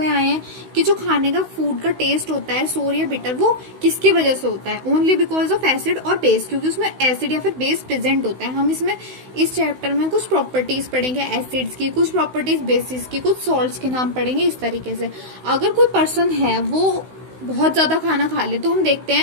आए हैं कि जो खाने का फूड का टेस्ट होता है सोर या बिटर, वो किसकी वजह से होता है? ओनली बिकॉज ऑफ एसिड और बेस, क्योंकि उसमें एसिड या फिर बेस प्रेजेंट होता है। हम इसमें इस चैप्टर में कुछ प्रॉपर्टीज पढ़ेंगे एसिड्स की, कुछ प्रॉपर्टीज बेसिस की, कुछ सॉल्ट्स के नाम पढ़ेंगे इस तरीके से। अगर कोई पर्सन है वो बहुत ज्यादा खाना खा ले तो हम देखते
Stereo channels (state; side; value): late; left; 16 ms